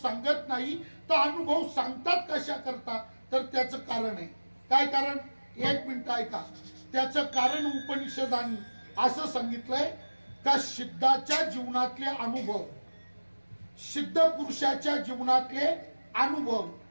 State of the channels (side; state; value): both; inverted; correlation -1.00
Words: सांगत नाही तर अनुभव सांगतात कशा करता, तर त्याचं कारण आहे। काय कारण, एक मिनिट ऐका। त्याचं कारण उपनिषदांनी असं सांगितलंय का सिद्धाच्या जीवनातले अनुभव, सिद्ध पुरुषाच्या जीवनातले अनुभव